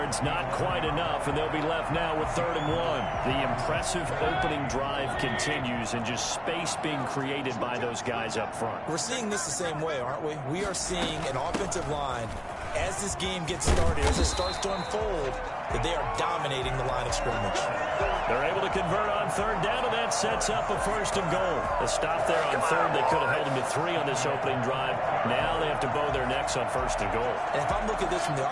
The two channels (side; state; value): both; identical; correlation 1.00